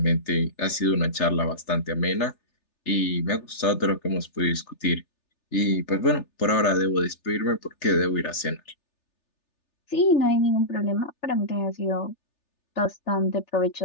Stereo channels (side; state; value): right; late; 3.4 ms